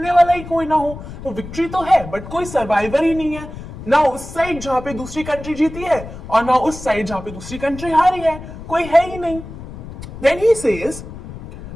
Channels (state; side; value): noise; left; rumble, 12 dB below the sound